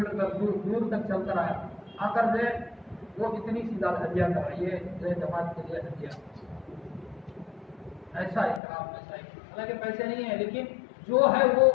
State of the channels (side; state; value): right; drops out; at 8.6 s